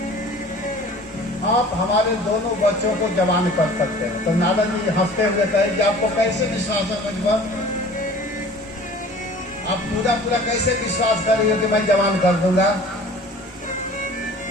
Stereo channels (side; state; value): both; normal; correlation 0.46